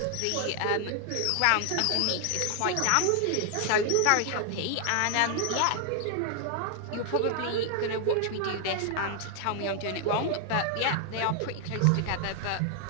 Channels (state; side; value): different; both; correlation 0.00